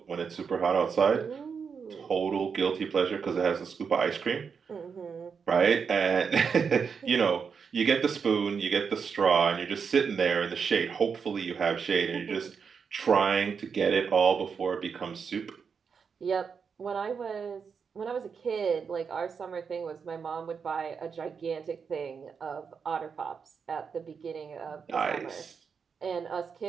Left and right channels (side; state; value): left; quieter; 6.1 dB